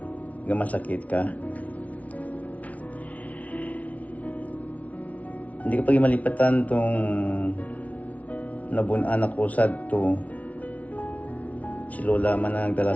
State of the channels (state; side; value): late; right; 0.069 ms